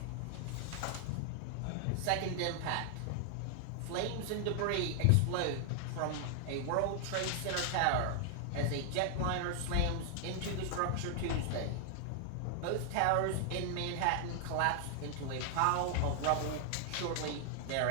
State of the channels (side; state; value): both; different; correlation 0.00